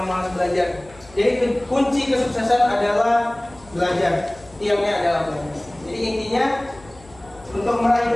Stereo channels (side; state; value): left; noise; hum, 24 dB below the sound